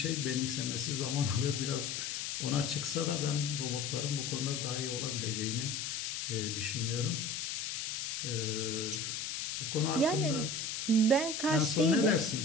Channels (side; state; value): left; noise; hiss, 3 dB below the sound